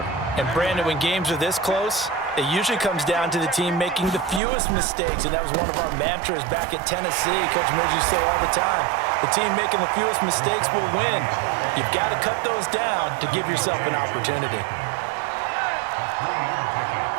And Brandon, when games are this close, It usually comes down to the team making the fewest mistakes, and that was one of our mantras back at Tennessee. Coach Midge used to say all the time, the team making the fewest mistakes will win. You've got to cut those down to give yourself an opportunity.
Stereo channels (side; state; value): left; drops out; at 4.4 s